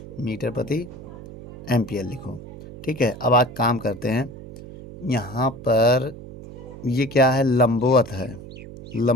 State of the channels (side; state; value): right; noise; hum, 14 dB below the sound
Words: मीटर प्रति एम्पियर लिखो। ठीक है, अब आज काम करते हैं। यहाँ पर ये क्या है, लंबवत है।